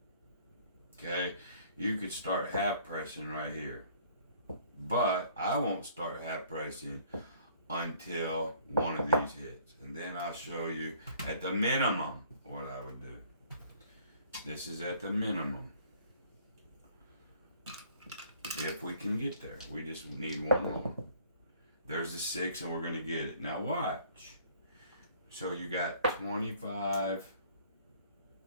Okay? You could start half pressing right here. But I won't start half pressing until one of these hits. And then I'll show you at the minimum what I would do. This is at the minimum. If we can get there. We just need one more. There's the 6 and we're going to get it. Now watch. So you got 25,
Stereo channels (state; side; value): inverted; both; correlation -0.57